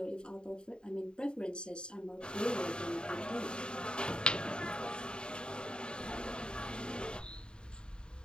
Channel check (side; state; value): right; late; 0.050 ms